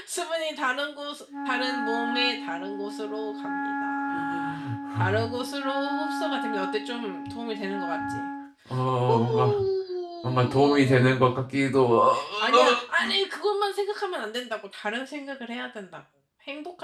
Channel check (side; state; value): both; identical; correlation 1.00